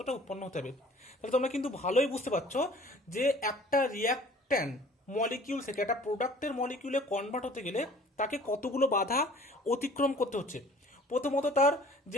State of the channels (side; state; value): both; normal; correlation 0.50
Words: উৎপন্ন হতে হবে। তাহলে তোমরা কিন্তু ভালোই বুঝতে পারছো যে একটা রিয়াক্ট্যান্ট মলিকিউল থেকে একটা প্রোডাক্টের মলিকিউলে কনভার্ট হতে গেলে তাকে কতগুলো বাধা অতিক্রম করতে হচ্ছে। প্রথমত তার